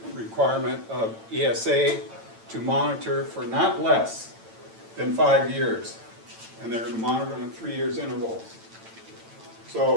requirement of ESA to monitor for not less than 5 years, and they're going to monitor on 3 years intervals.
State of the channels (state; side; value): late; left; 9.0 ms